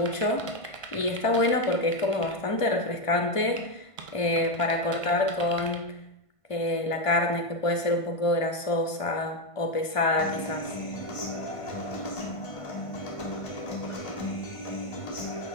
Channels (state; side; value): late; right; 1.5 ms